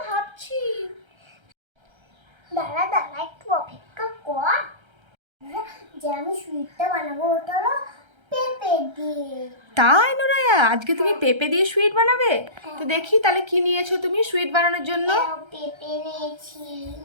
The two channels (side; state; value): left; late; 1.3 ms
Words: ভাবছি। দাঁড়া দাঁড়া একটু অপেক্ষা কর। যে আমি সুইটটা বানাবো ওটা হলো পেঁপে দিয়ে। তাই নোরায়া, আজকে তুমি পেঁপে দিয়ে সুইট বানাবে? তো দেখি তাহলে কি নিয়েছো তুমি সুইট বানানোর জন্য? পেঁপে নিয়েছি,